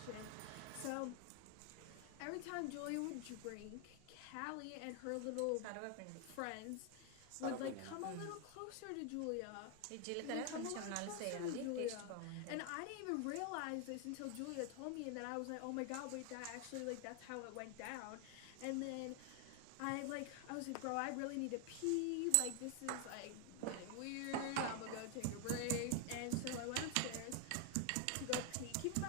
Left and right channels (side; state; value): both; different; correlation 0.00